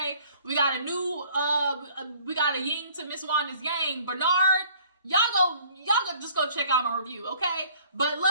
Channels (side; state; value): both; inverted; correlation -0.55